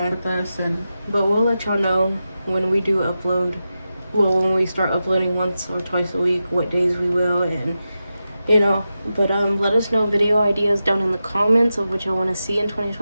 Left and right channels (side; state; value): both; inverted; correlation -0.91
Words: work with us. And But we'll let y'all know when we do upload. Well, when we start uploading once or twice a week, what days we will, and you know. But let us know video ideas down in the comments of what y'all want to see in